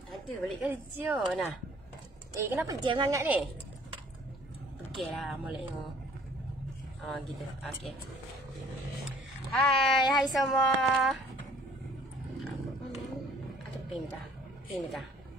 Ada balik kerja nah. Kenapa jam sangat ni? Pergilah molek tengok. Gitu. Okey. Hai semua. Ada pin dah. Sekejap.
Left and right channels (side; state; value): both; normal; correlation 0.55